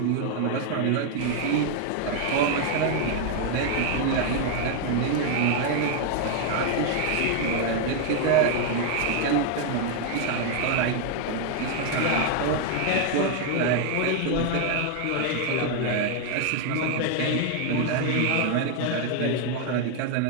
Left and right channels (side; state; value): both; different; correlation 0.00